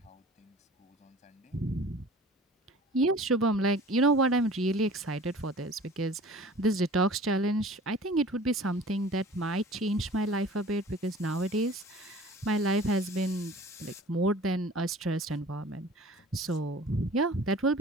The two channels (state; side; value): normal; both; correlation 0.45